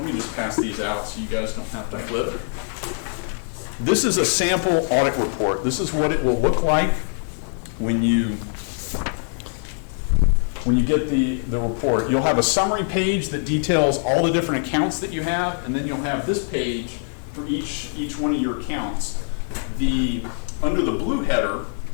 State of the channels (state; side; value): silent; right; 63 dB below the other